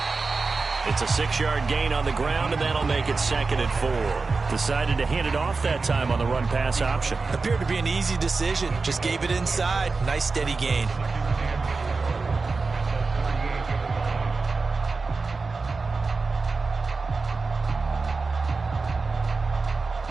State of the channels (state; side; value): quieter; left; 4.1 dB